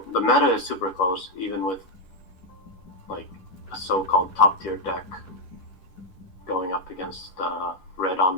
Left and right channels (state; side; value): late; right; 10 ms